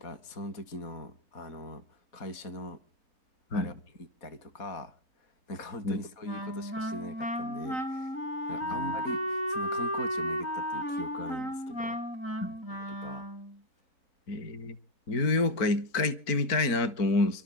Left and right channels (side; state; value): right; late; 4.4 ms